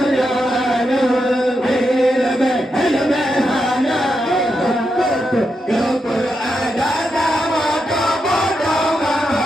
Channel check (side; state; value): both; normal; correlation 0.85